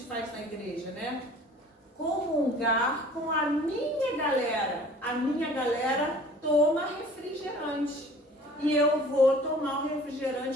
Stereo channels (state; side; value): normal; both; correlation 0.49